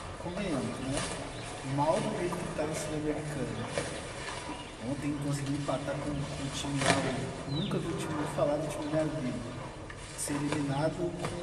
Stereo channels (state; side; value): identical; both; correlation 1.00